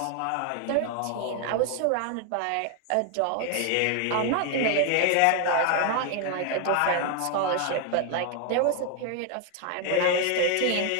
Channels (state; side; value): different; both; correlation 0.01